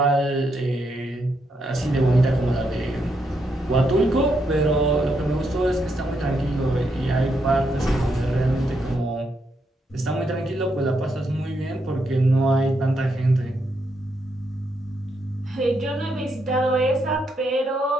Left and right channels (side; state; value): both; normal; correlation 0.79